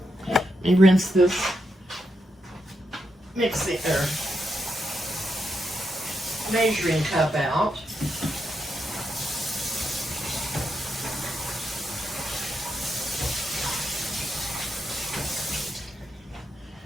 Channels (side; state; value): both; normal; correlation 0.83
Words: let me rinse this mixing or measuring cup out.